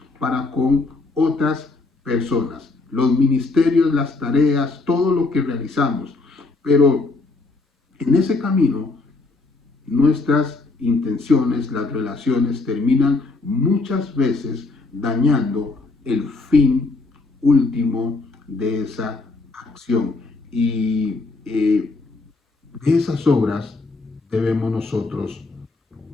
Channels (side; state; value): right; quieter; 3.6 dB